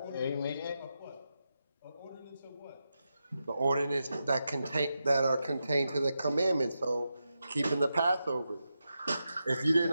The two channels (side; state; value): both; inverted; correlation -0.88